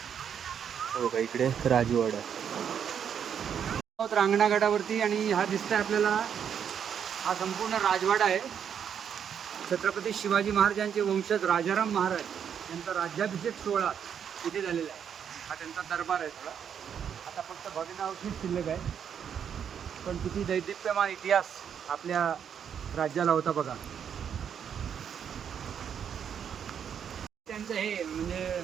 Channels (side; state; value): left; quieter; 8.1 dB